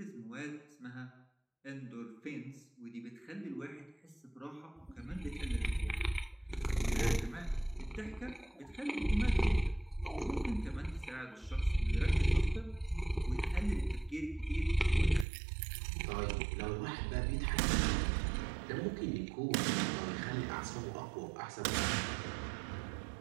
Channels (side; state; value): left; drops out; at 15.2 s